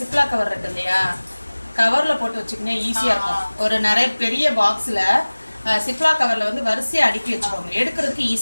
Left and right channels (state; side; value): inverted; both; correlation -1.00